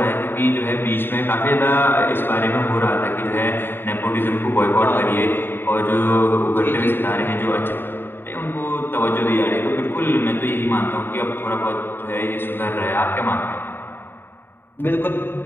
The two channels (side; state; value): right; late; 0.10 ms